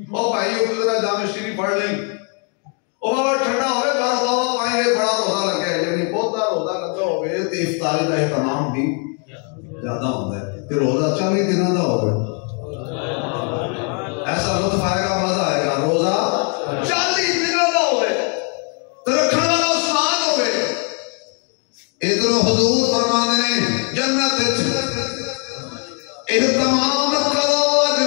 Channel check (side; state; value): right; quieter; 39.4 dB